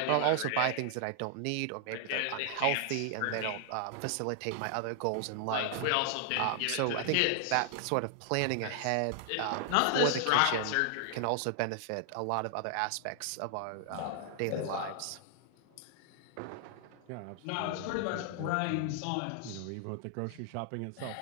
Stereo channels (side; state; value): both; different; correlation 0.00